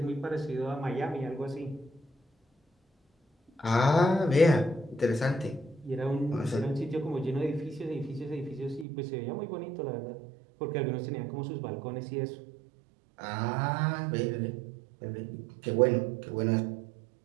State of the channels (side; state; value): left; drops out; at 8.8 s